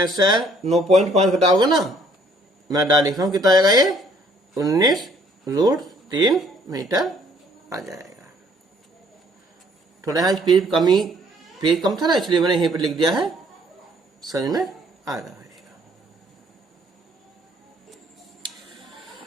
से 9.5 घटाओगे ना, मैं डाल लिख रहा हूँ, कितना आएगा ये 19√3 मीटर आ जाएगा। थोड़ा यहाँ पेज कम था ना, इसलिए मैंने यहीं पर लिख दिया है, समझ में आ रहा है।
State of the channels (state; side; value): normal; both; correlation 0.62